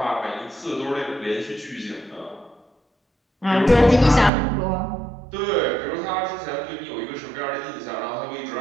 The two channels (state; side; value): drops out; left; at 4.3 s